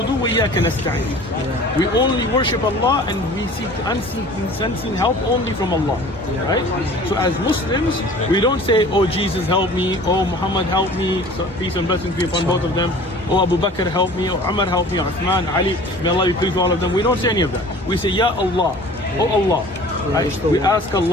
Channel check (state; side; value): normal; both; correlation 0.45